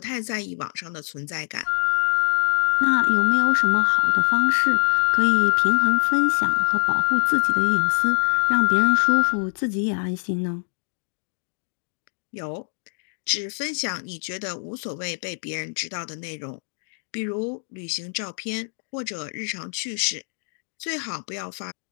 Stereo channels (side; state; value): right; silent; digital silence